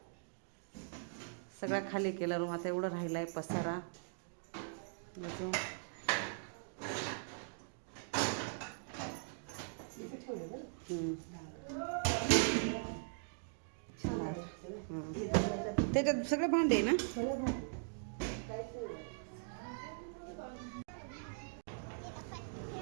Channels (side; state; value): left; silent; digital silence